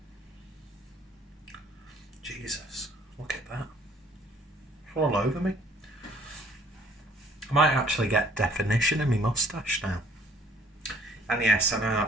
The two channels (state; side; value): normal; both; correlation 0.58